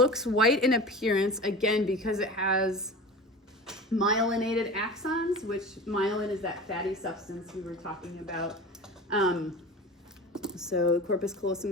white in appearance, again, because it has myelinated axons, which myelin is that fatty substance we were talking about. So corpus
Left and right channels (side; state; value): both; normal; correlation 0.35